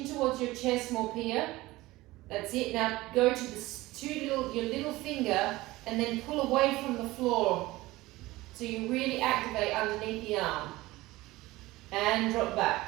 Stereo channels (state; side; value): quieter; left; 19.0 dB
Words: towards your chest, more here. That's it. Now go to your little finger and then pull away from the floor. So you really activate underneath the arm. And drop back.